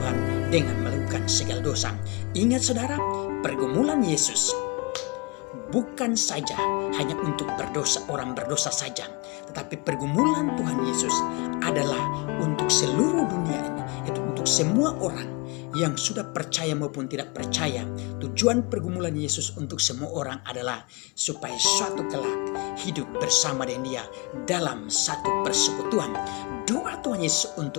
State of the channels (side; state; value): right; quieter; 28.4 dB